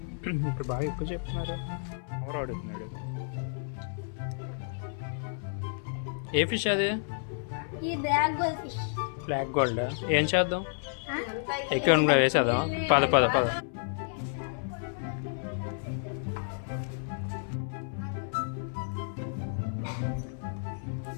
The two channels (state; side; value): silent; right; 57 dB below the other